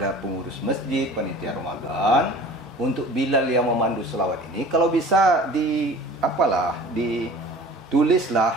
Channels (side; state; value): both; normal; correlation 0.44